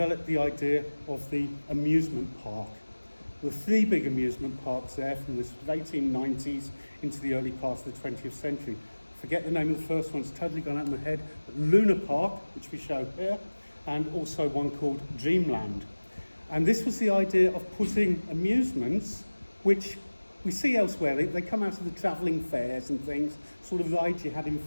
the idea of the amusement park. There were 3 big amusement parks there from the 1890s into the early part of the 20th century. Forget the name of the first one, it's totally gone out of my head. But Luna Park, which we show here, and also one called Dreamland. And this was the idea of putting amusements, which we see elsewhere. They come out of the travelling fairs and things, sort of rides you had in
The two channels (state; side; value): inverted; both; correlation -1.00